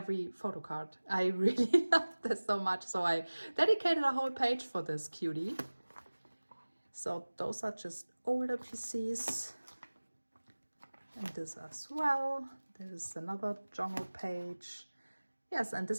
photocard. I really love this so much, so I dedicated a whole page for this cutie. So those are just older PCs, and this as well. There's another Jongho page. Yes, and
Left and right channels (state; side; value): inverted; both; correlation -1.00